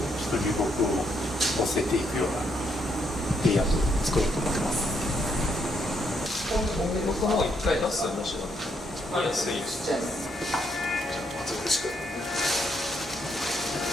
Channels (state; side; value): normal; both; correlation 0.74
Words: ょっと流木を乗せていくようなレイアウトを作ろうと思ってます。僕も一回出す面白い。安いです。じゃあ松本しく。